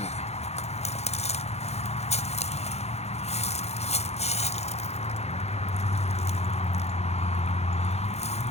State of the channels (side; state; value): right; late; 0.31 ms